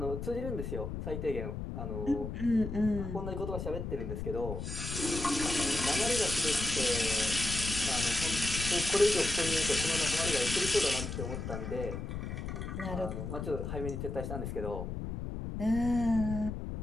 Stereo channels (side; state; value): left; noise; rumble, 5 dB below the sound